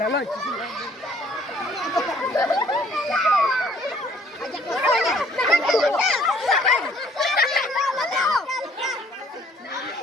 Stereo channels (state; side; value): normal; both; correlation 0.60